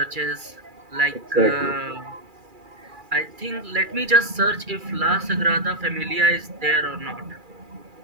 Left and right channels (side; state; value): left; late; 2.4 ms